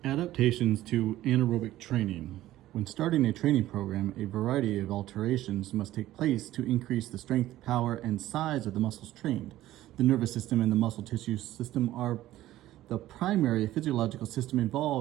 Adaptations to anaerobic training. When starting a training program, a variety of alterations must take place to increase the strength, power, and size of the muscles trained. The nervous system and the muscle tissue system are the primary physiological system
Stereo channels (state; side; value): quieter; left; 14.8 dB